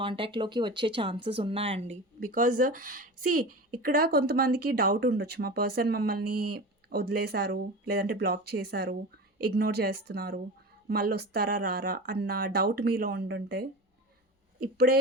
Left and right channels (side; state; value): both; normal; correlation 0.30